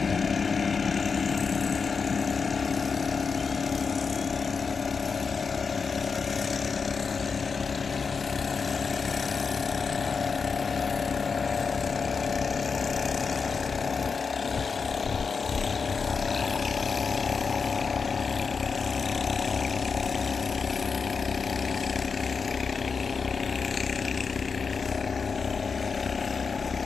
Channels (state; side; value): quieter; right; 5.3 dB